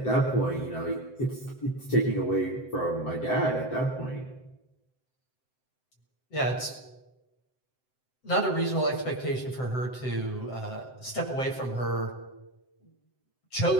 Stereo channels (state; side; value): late; right; 7.8 ms